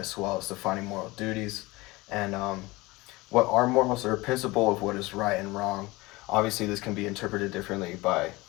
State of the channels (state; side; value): quieter; right; 21.8 dB